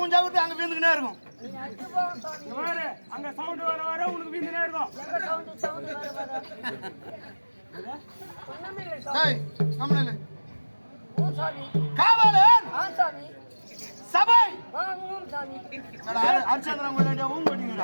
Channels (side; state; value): both; inverted; correlation -1.00